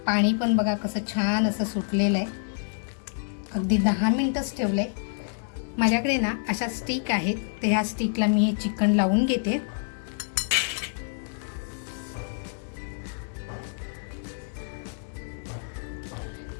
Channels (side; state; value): right; silent; digital silence